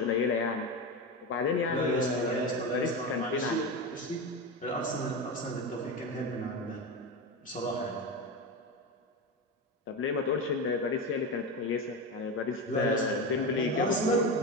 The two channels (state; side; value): normal; both; correlation 0.19